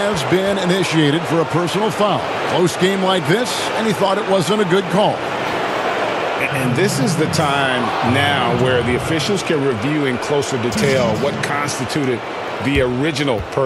been initiated for a personal foul. Close game like this, and he thought it wasn't a good call. And this is the time now where the officials can review in closer detail what constituted the original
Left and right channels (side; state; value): both; identical; correlation 1.00